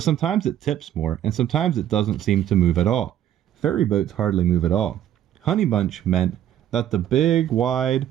sometimes it tips more, and sometimes it doesn't seem to move at all. Ferry boats hardly move at all." Honeybunch meant that the big, wide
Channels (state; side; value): quieter; left; 11.2 dB